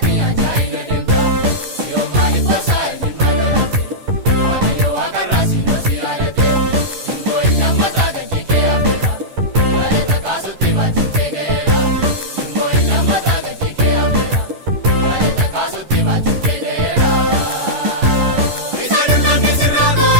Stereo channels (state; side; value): late; left; 11 ms